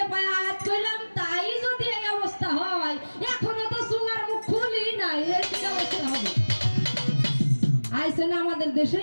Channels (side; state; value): both; inverted; correlation -1.00